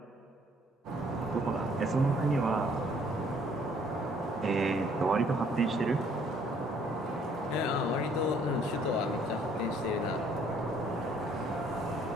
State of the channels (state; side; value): normal; both; correlation 0.62